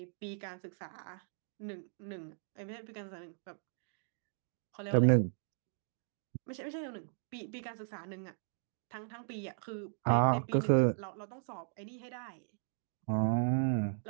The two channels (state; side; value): silent; left; digital silence